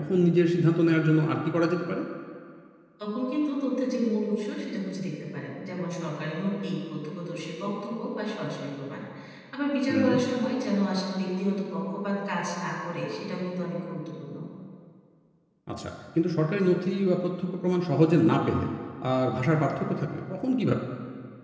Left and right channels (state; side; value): identical; both; correlation 1.00